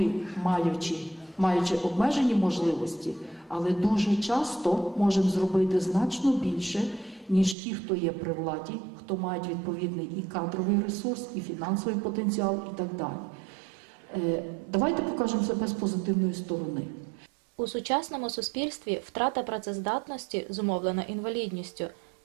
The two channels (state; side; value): drops out; left; at 7.6 s